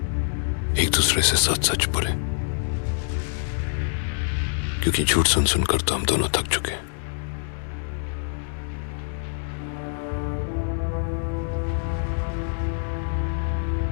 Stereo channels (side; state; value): right; silent; digital silence